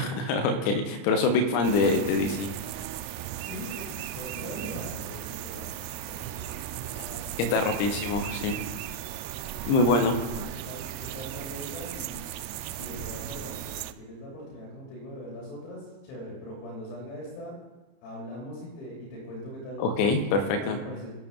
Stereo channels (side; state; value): right; late; 30 ms